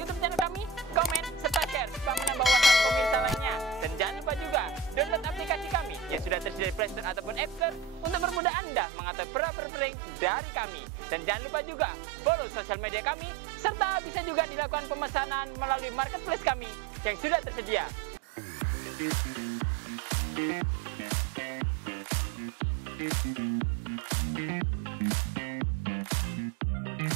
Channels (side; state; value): left; drops out; at 8.4 s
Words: channel kami, komen, serta share supaya menambah wawasan pemirsa lainnya. Dan jangan lupa juga download aplikasi kami yang sudah tersedia di Play Store ataupun App Store untuk mempermudah Anda mengatur perabot-perabot dari kami. Dan jangan lupa juga follow sosial media kami, serta bisa juga dilakukan pemesanan melalui marketplace kami yang sudah tersedia.